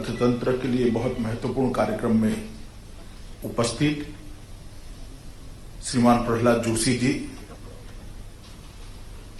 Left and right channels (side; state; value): both; identical; correlation 1.00